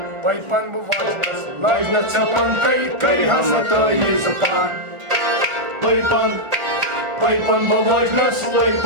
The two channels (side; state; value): left; late; 1.4 ms